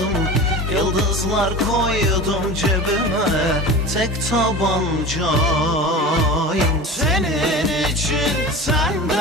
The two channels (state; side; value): normal; both; correlation 0.33